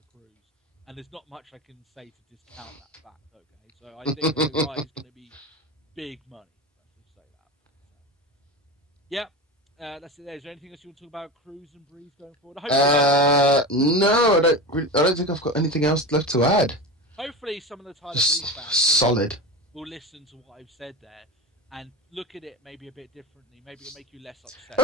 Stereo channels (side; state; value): both; normal; correlation 0.25